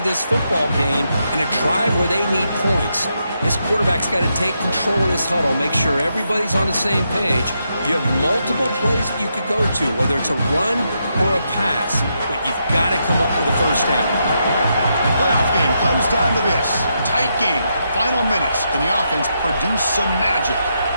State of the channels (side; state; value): both; inverted; correlation -0.82